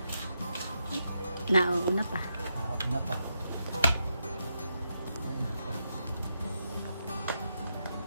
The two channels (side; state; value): both; inverted; correlation -0.83